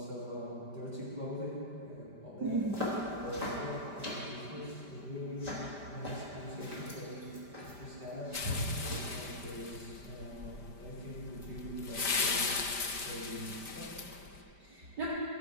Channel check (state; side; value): late; left; 5.1 ms